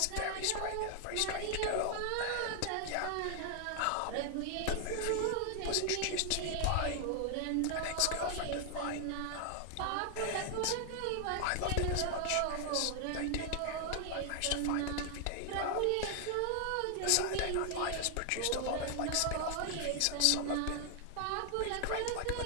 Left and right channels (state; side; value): different; both; correlation 0.00